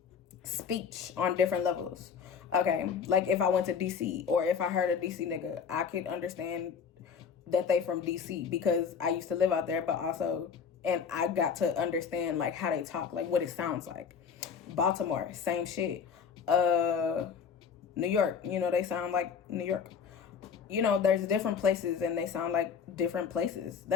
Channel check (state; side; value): quieter; right; 6.6 dB